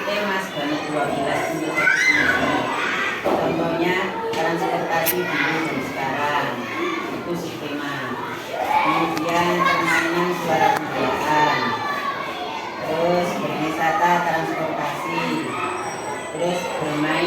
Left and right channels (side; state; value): both; identical; correlation 1.00